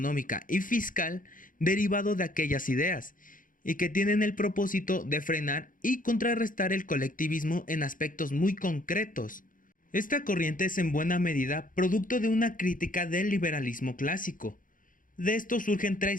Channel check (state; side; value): late; right; 0.39 ms